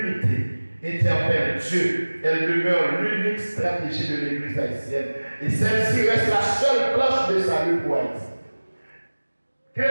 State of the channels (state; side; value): inverted; both; correlation -1.00